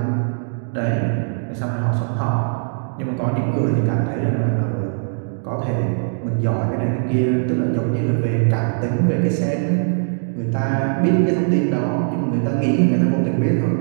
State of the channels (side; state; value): left; silent; digital silence